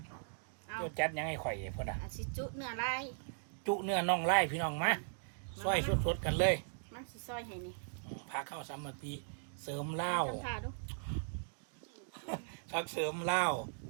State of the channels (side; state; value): left; silent; digital silence